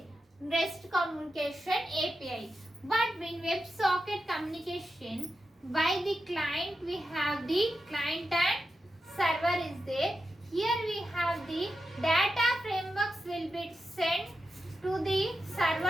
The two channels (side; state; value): both; normal; correlation 0.90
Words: REST communication API. But in WebSocket communication, by the client we have the client and server is there. Here we have the data frameworks will be sent to the